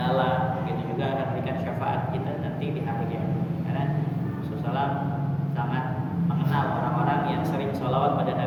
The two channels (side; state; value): both; identical; correlation 1.00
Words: begitu juga akan memberikan syafaat kita nanti di hari kiamat. Karena Rasulullah sangat mengenal orang-orang yang sering sholawat pada